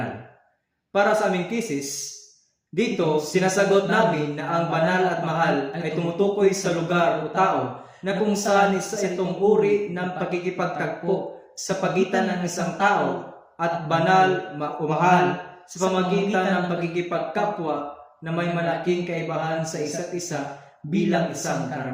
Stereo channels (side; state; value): both; identical; correlation 1.00